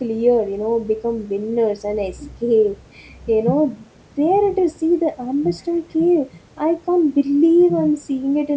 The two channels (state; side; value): identical; both; correlation 1.00